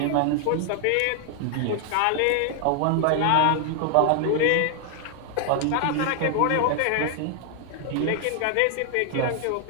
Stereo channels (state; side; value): different; both; correlation 0.00